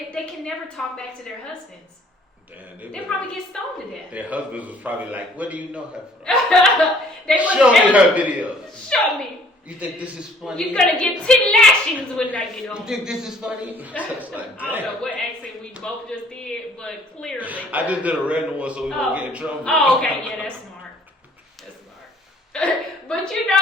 can never talk back to their husbands. Damn, they probably get stoned to death. Their husbands was probably like, "What do you know her from? Show me her videos. Show me. You think this is funny? You're gonna get 10 lashings when I get home. You think this is funny?" Like, I don't know what accent we both just did, but clearly. I just did a random one so we won't get in trouble. Oh, okay, yeah, that's smart. That's smart. But you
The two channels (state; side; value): normal; both; correlation 0.58